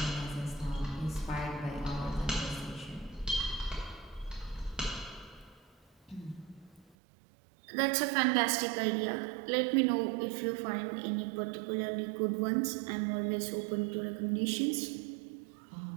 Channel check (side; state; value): left; drops out; at 7.0 s